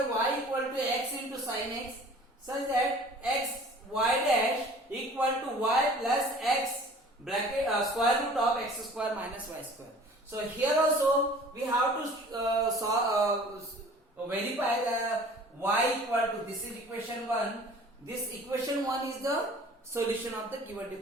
y equal to x into sin x such that x y dash equal to y plus x bracket square root of x square minus y square. So here also we have to verify the y equal to, this is equation 1. This equation 1 is the solution of the given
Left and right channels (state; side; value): normal; both; correlation 0.48